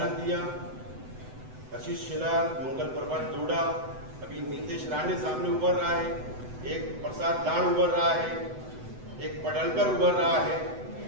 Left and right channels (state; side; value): late; left; 7.9 ms